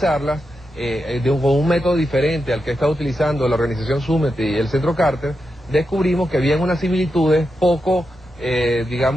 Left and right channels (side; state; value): both; normal; correlation 0.87